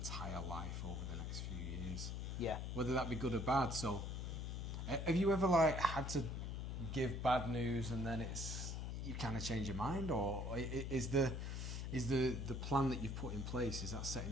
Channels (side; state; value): left; noise; hum, 3 dB below the sound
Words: life over the next few years. Yeah. Whether that be good or bad. So have you ever had to give bad news and then you kind of change your mind, or is the plan that you've put in place, is that set